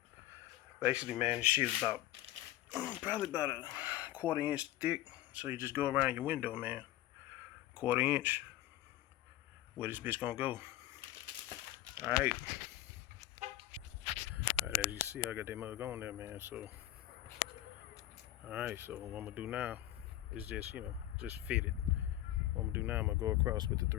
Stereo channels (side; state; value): right; quieter; 14.9 dB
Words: basically, man, this shit is about probably about a 1/4 inch thick. So you just go around your window, man. 1/4 inch. Where this bitch gonna go? All right. All right, as you see, I got that mug on there, man. So all right. So what I'm gonna do now is just just fit it. What I'm gonna do now, I'm gonna go across with the